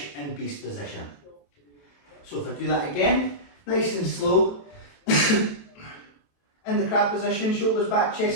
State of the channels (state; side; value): late; right; 28 ms